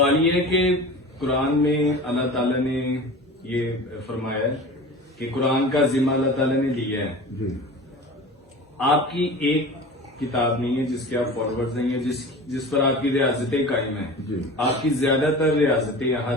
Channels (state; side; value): normal; both; correlation 0.36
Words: یہ ہے کہ قرآن میں اللہ تعالیٰ نے یہ فرمایا ہے کہ قرآن کا ذمہ اللہ تعالیٰ نے لیا ہے۔ جی آپ کی ایک کتاب نہیں ہے جس کے آپ فارورڈ نہیں ہے، جس پر آپ کی ریاستیں قائم ہیں۔ جی آپ کی زیادہ تر ریاستیں